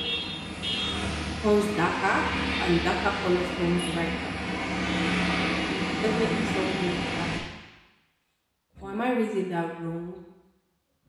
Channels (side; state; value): both; identical; correlation 1.00